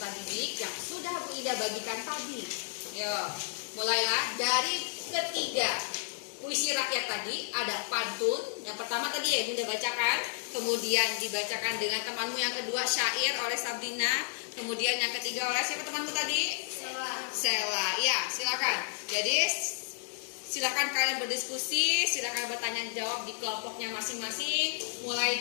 didik yang sudah Bu Ida bagikan tadi. Yuk, mulailah dari ketiga. Puisi rakyat tadi ada pantun. Yang pertama tadi ya Bunda bacakan, kemudian dibacakan dengan temanmu. Yang kedua syair oleh Sabrina, kemudian yang ketiga oleh siapa temanmu tadi? Sela. Ya, silakan. Jadi silakan kalian berdiskusi, silakan bertanya jawab di kelompoknya masing-masing. Mulai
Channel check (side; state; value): right; silent; digital silence